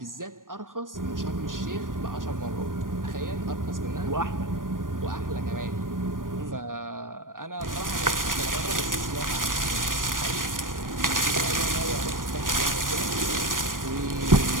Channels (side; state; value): left; late; 0.90 ms